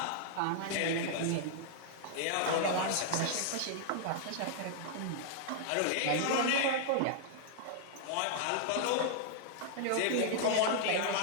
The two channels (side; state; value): both; different; correlation -0.01